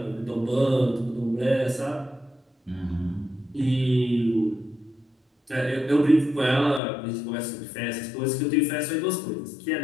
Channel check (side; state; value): right; drops out; at 6.8 s